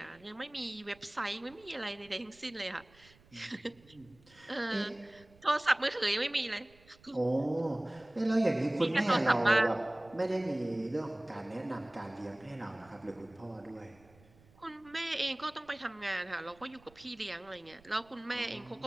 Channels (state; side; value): noise; right; rumble, 27 dB below the sound